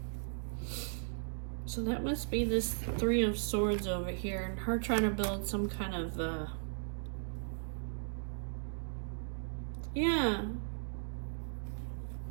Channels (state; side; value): silent; left; digital silence